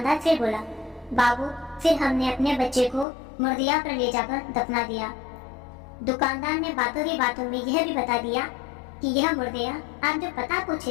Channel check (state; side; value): drops out; right; at 3.1 s